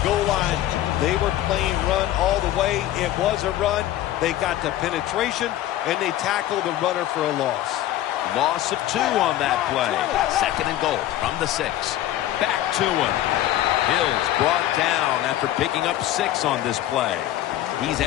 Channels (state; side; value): quieter; right; 13.6 dB